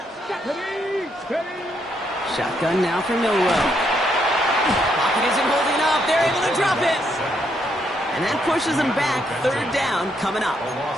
Shotgun now for Milrow. Pocket isn't holding up. They're able to drop it. And that pushes him back. 3rd down coming up.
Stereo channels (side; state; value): both; normal; correlation 0.75